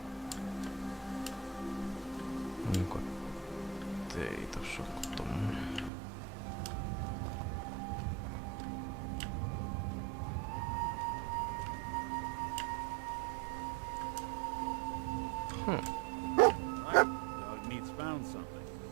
Onko ei tossa oo tommonen? Right. Dog meat's found something.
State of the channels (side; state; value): left; drops out; at 5.9 s